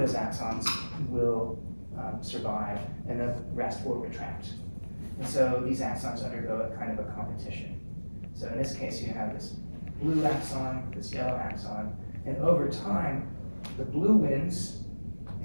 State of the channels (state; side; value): inverted; both; correlation -1.00